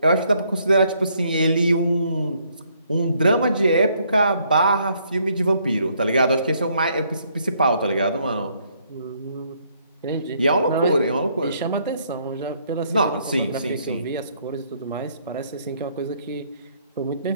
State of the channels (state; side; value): inverted; both; correlation -0.69